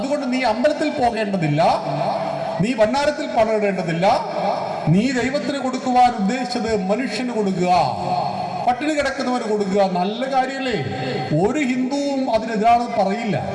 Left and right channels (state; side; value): identical; both; correlation 1.00